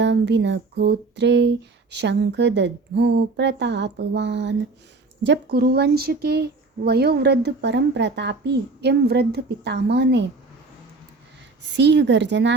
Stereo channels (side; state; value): left; quieter; 3.7 dB